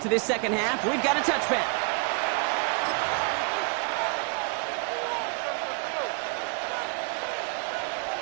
to this second half. We've got a touchback.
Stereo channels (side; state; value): left; quieter; 36.8 dB